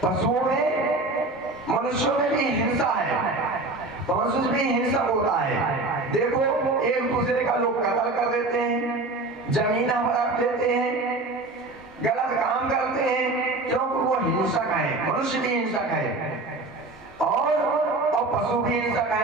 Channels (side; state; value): left; quieter; 3.1 dB